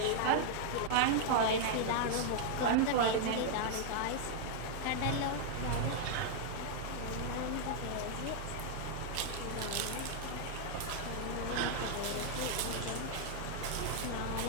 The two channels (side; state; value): both; different; correlation -0.01